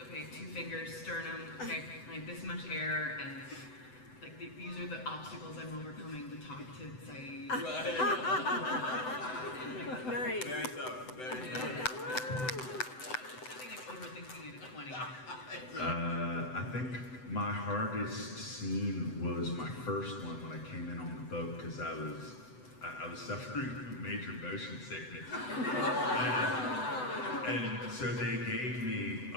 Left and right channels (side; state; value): right; late; 7.9 ms